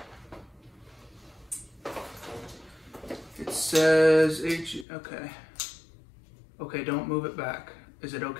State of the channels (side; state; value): right; drops out; at 4.9 s